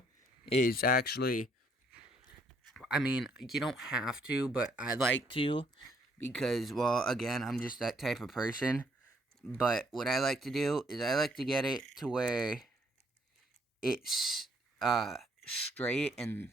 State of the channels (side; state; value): both; normal; correlation 0.67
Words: is actually, I mean, you don't have to, but I like to, because, well, again, I'm just that type of person. But what I like to do is I like to get it to where it's straight